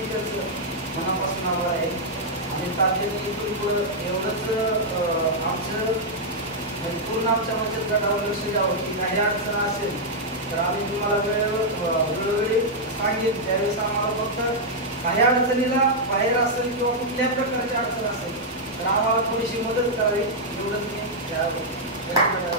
त्यांचं मनापासून आभार आहे। आणि तातडीने इथून पुढं एवढंच आमचं पूर्ण आमच्या बचत गटावर लक्ष द्यावं की काही अडचण असेल तर आम्ही तुम्हाला वेळोवेळी सांगेन। त्यावेळेस आम्हाला फक्त काही अडचणीला बाहेर असेल किंवा कुठल्याही प्रकारची अडचण असेल तर आम्हाला थोडीशी मदत करावी एवढंच मी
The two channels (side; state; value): both; normal; correlation -0.05